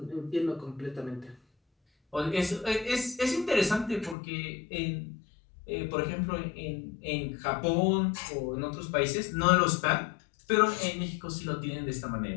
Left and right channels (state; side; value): drops out; right; at 4.2 s